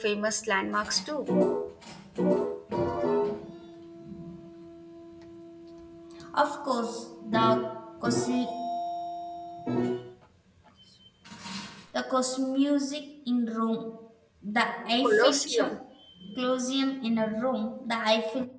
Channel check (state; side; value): identical; both; correlation 1.00